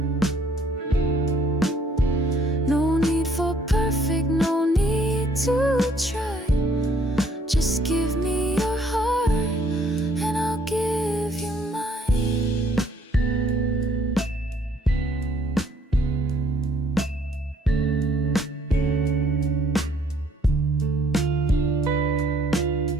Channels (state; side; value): normal; both; correlation 0.64